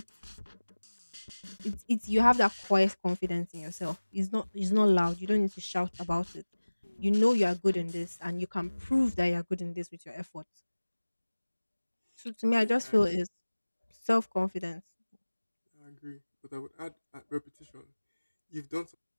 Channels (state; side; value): inverted; both; correlation -1.00